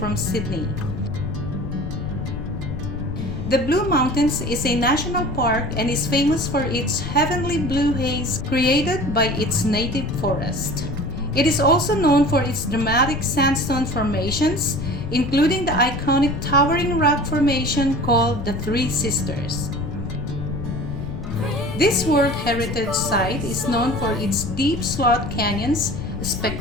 Sydney. The Blue Mountains is a national park and is famous for its heavenly blue haze created by its native forest. It is also known for its dramatic sandstone formations, including the iconic towering rock formation called the Three Sisters. This World Heritage Site is known for its deep slot canyons,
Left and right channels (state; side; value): noise; left; rumble, 6 dB below the sound